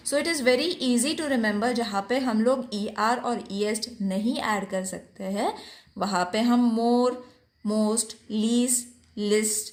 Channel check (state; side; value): identical; both; correlation 1.00